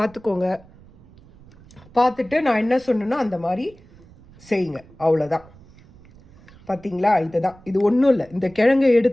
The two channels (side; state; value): right; noise; rumble, 25 dB below the sound